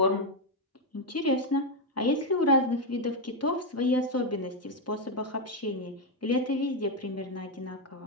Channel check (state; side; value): normal; both; correlation 0.04